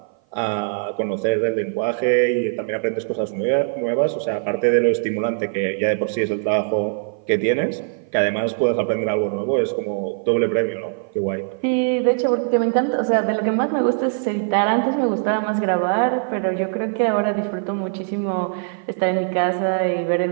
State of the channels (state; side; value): silent; left; 56 dB below the other